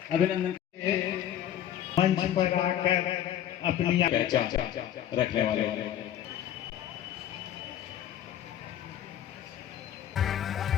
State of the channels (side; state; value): right; quieter; 11.1 dB